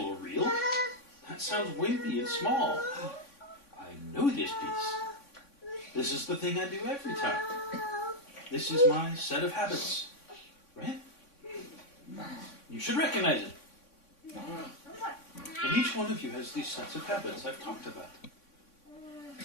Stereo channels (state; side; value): late; right; 3.6 ms